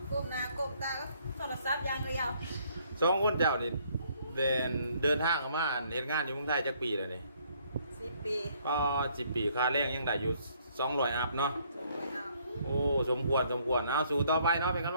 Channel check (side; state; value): both; inverted; correlation -0.65